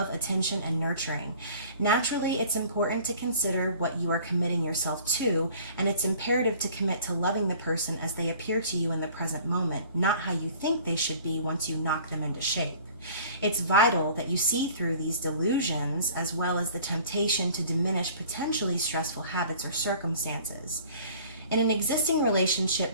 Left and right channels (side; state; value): both; inverted; correlation -0.48